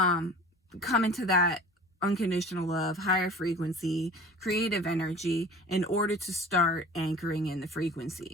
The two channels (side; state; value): both; normal; correlation 0.43